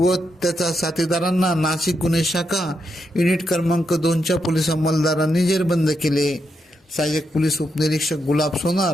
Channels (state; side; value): normal; both; correlation 0.82